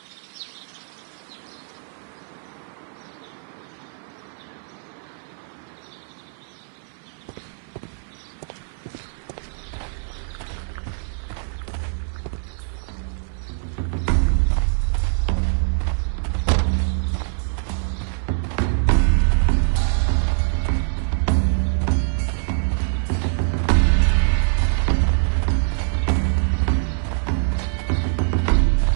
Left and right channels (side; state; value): left; silent; digital silence